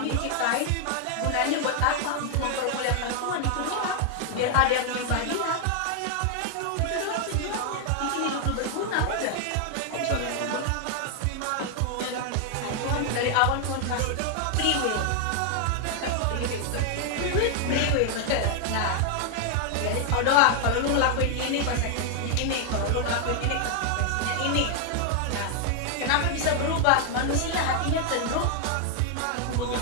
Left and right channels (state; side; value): different; both; correlation 0.00